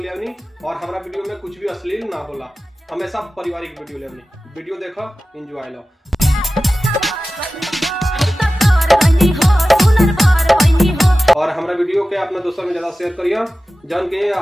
ले आनी और हमारा वीडियो में कुछ भी अश्लील ना होला, हमेशा पारिवारिक वीडियो ले आनी। वीडियो देखो, एंजॉय लो। और हमारा वीडियो के अपना दोस्तों में ज्यादा शेयर करिए, जौन के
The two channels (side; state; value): both; normal; correlation 0.95